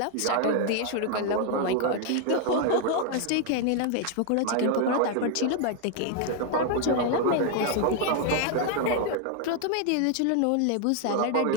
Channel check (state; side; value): different; both; correlation 0.01